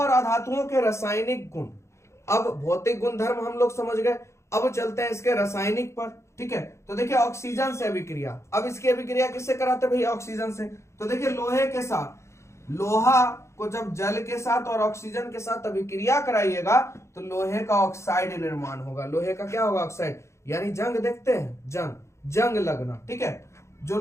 अधातुओं के रासायनिक गुण। अब भौतिक गुणधर्म हम लोग समझ गए, अब चलते हैं इसके रासायनिक पर। ठीक है, तो देखिए ऑक्सीजन से अभिक्रिया, अब इसकी अभिक्रिया किससे कराते हैं भैया? ऑक्सीजन से। तो देखिए लोहे के साथ, लोहा को जब जल के साथ और ऑक्सीजन के साथ अभिक्रिया कराइएगा तो लोहे का ऑक्साइड निर्माण होगा। लोहे का क्या होगा? ऑक्साइड, यानी जंग देखते हैं, जंग लगना। ठीक है, जो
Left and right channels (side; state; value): right; late; 0.14 ms